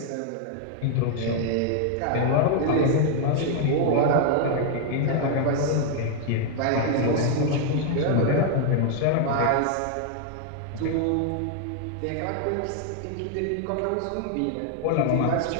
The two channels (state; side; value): different; both; correlation 0.00